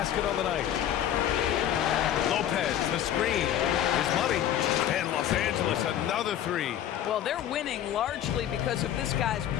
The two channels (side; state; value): right; quieter; 11.0 dB